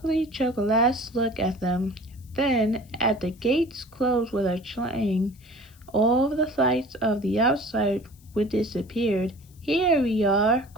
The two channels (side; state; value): left; noise; hiss, 28 dB below the sound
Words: last look at them. Then, as the gates closed with a clang, all the lights of the outside would disappeared. Here we are,